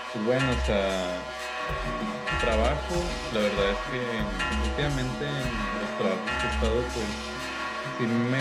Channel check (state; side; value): identical; both; correlation 1.00